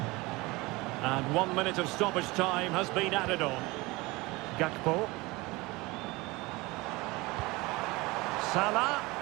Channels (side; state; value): left; quieter; 22.8 dB